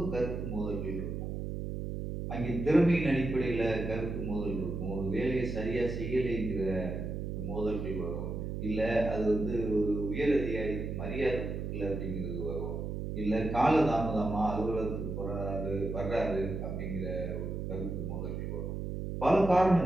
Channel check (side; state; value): right; noise; hum, 4 dB below the sound